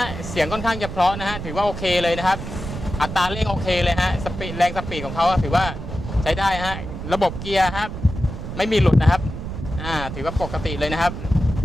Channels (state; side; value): noise; right; rumble, 8 dB below the sound